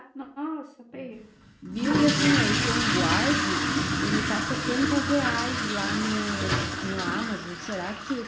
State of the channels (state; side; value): identical; both; correlation 1.00